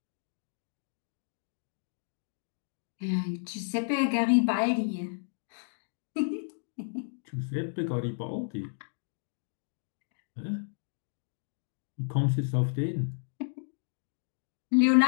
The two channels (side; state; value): right; silent; digital silence